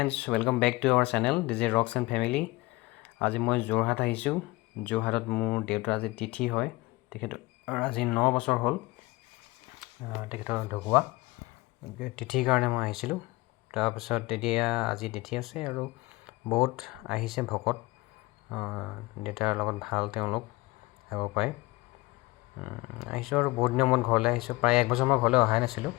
welcome back to our channel. This is Rocks and Family. আজি মই যোৰহাট আহিছোঁ। যোৰহাটত মোৰ দেউতাৰ আজি তিথি হয়। তেখেতৰ আজি 9 বছৰ হ'ল তেখেতৰ ঢুকুৱা তিথিৰ কাৰণে মই আহিছিলোঁ। তাৰপিছত এতিয়া আজি তিথি আছে আৰু বহুত আহিছে ভকত। দেউতাৰ লগত ভাল তেওঁলোক আহিব পাৰে। আহিছোঁ আৰু বহুত দিনৰ মূৰত ঘৰলৈ আহিছোঁ। প্ৰায় 1 বছৰ মই ঘৰলৈ অহাই নাছিলোঁ।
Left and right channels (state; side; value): quieter; right; 21.3 dB